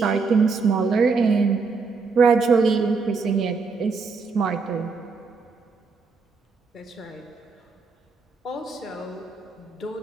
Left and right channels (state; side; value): quieter; left; 4.6 dB